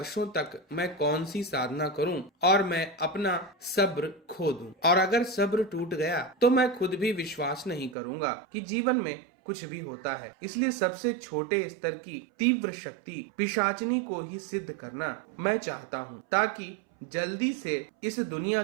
तक मैं कौन सी साधना करूं और मैं अपना सब्र खो दूं, और अगर सब्र टूट गया तो मैं खुद भी विश्वास नहीं करूंगा कि जीवन में कुछ भी होता है। इसलिए सबसे छोटे स्तर की तीव्र शक्ति पिशाचनी को ही सिद्ध करना मैं चाहता हूँ, ताकि जल्दी से इस दुनिया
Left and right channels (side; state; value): left; drops out; at 8.0 s